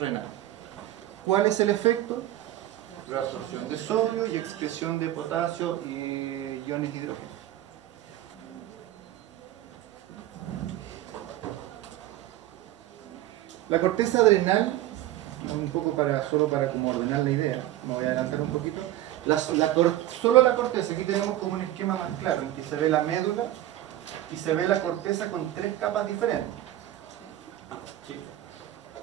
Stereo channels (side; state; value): left; quieter; 14.2 dB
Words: ¿Cuál es el efecto? Reabsorción de sodio y excreción de potasio y iones de hidrógeno. La corteza adrenal, un poco solo para como ordenar la idea, me voy a adelantar un poquito. Solo la corteza, aquí tenemos como un esquema más claro, en que se ve la médula y se ve la corteza con 3 capas diferentes. ¿Sí?